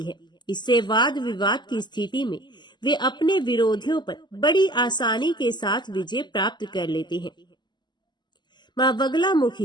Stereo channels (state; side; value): late; right; 0.21 ms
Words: है। इससे वाद विवाद की स्थिति में वे अपने विरोधियों पर बड़ी आसानी के साथ विजय प्राप्त कर लेते हैं। मां